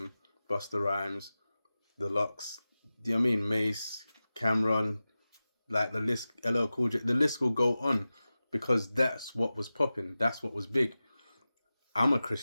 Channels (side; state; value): both; inverted; correlation -0.95